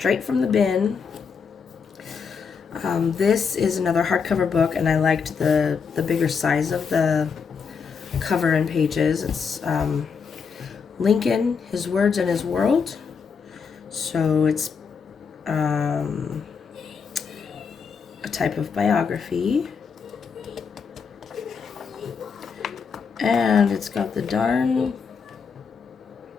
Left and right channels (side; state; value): right; quieter; 5.9 dB